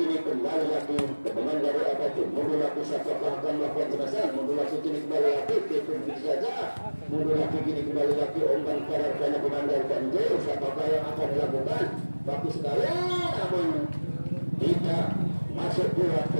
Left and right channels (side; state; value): both; inverted; correlation -1.00